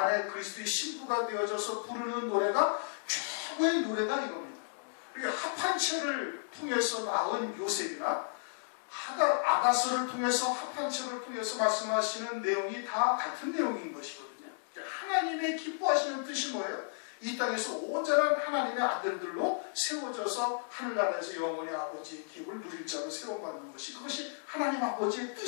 그리스도의 신부가 되어져서 부르는 노래가 최고의 노래다 이겁니다. 합한 채를 통해서 낳은 요셉이나 아가서를 통해서 합한 채를 통해서 말씀하시는 내용이 다 같은 내용인 것이거든요. 하나님의 기뻐하시는 뜻이 뭐예요? 이 땅에서 온전한 하나님의 아들들로 세워져서 하늘나라에서 영원히 아버지의 기업을 누릴 자로 세워받는 것이, 그것이 하나님 아버지의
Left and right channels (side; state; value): right; silent; digital silence